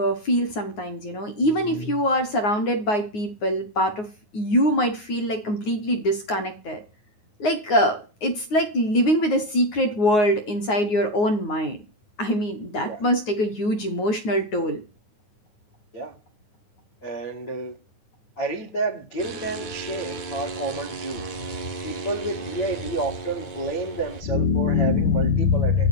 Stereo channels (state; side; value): late; right; 9.5 ms